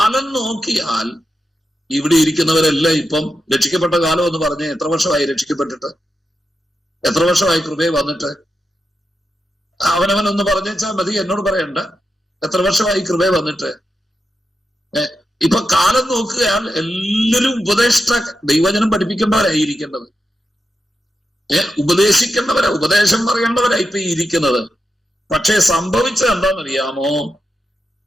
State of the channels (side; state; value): both; normal; correlation 0.88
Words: നോക്കിയാൽ ഇവിടെ ഇരിക്കുന്നവരെല്ലാം ഇപ്പം രക്ഷിക്കപ്പെട്ട കാലം എന്ന് പറഞ്ഞ് എത്ര വർഷമായി രക്ഷിക്കപ്പെട്ടിട്ട്? എത്ര വർഷമായി കൃപയെ വന്നിട്ട്? അവനവനൊന്ന് പറഞ്ഞേച്ചാൽ മതി, എന്നോട് പറയണ്ട. എത്ര വർഷമായി കൃപയെ വന്നിട്ട്? ഇപ്പൊ കാലം നോക്കുകയാൽ എല്ലാവരും ദൈവജനം പഠിപ്പിക്കേണ്ടവരായിരിക്കേണ്ടത്, ഉപദേശിക്കേണ്ടവരാ, ഉപദേശം പറയേണ്ടവരാ ഇപ്പൊ ഇരിക്കുന്നത്. പക്ഷെ സംഭവിച്ചത് എന്താണെന്നറിയാമോ?